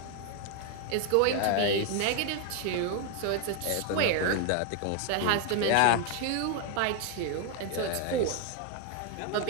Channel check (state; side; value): different; both; correlation 0.01